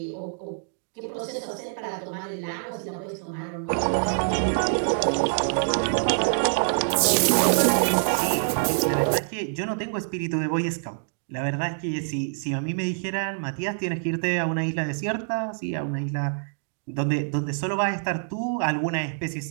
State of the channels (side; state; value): left; silent; digital silence